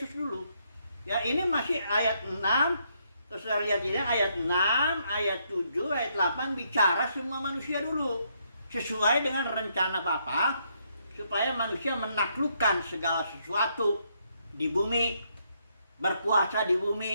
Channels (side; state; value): both; inverted; correlation -0.74